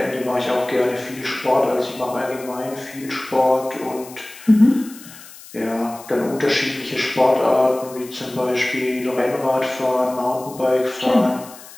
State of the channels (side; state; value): left; noise; hiss, 18 dB below the sound